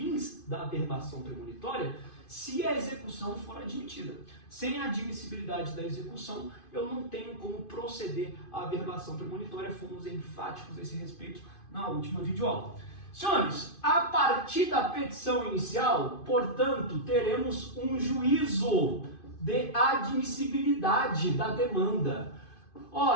da averbação premonitória se a execução for admitida. Sem a admissibilidade da execução, eu não tenho como proceder à averbação premonitória. Fomos enfáticos a esse respeito na última videoaula. Senhores, a partir da petição inicial, portanto, teremos um juízo de admissibilidade da demanda.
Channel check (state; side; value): late; right; 2.5 ms